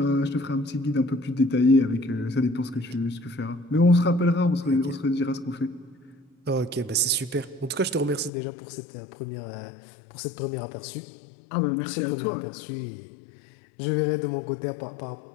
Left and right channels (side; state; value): right; drops out; at 8.3 s